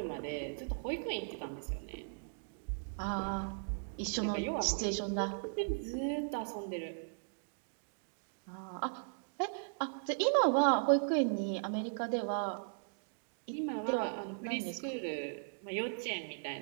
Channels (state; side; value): silent; left; digital silence